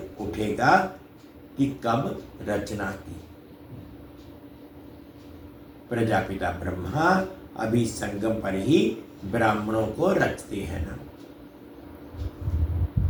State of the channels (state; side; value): identical; both; correlation 1.00